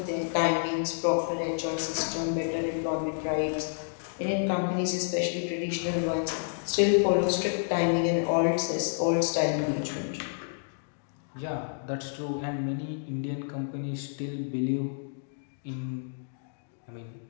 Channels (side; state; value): right; silent; digital silence